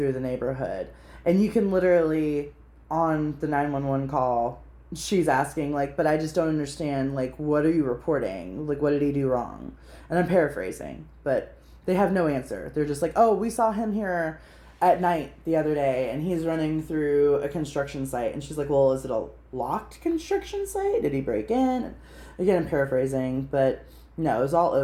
the neighborhood. And you can literally, on the 911 call, she's asking, like, but I just don't understand, like, what are you reporting? Like, what did he do wrong? And I'm paraphrasing, but they have no answer. They're just like, oh, we saw him here at night the other day, and he's running through a construction site. And she's like, well, is it a locked construction site? Did he break in? And again, I'm paraphrasing, but no, it was all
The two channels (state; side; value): identical; both; correlation 1.00